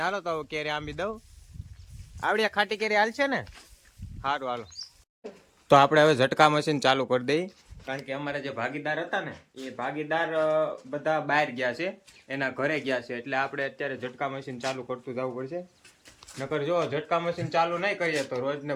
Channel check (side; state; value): both; identical; correlation 1.00